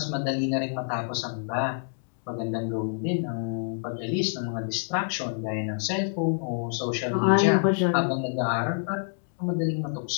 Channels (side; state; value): right; silent; digital silence